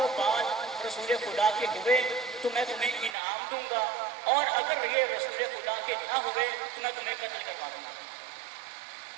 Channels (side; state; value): left; drops out; at 3.2 s